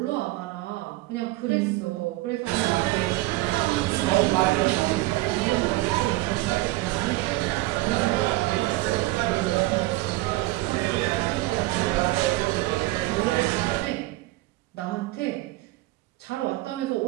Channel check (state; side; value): quieter; left; 19.4 dB